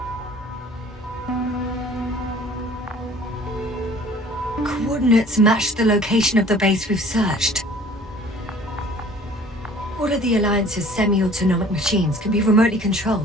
Coordinates match the location of the base we've searched. All of the Alliance's semi-autonomic machines can be remotely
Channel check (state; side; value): normal; both; correlation 0.49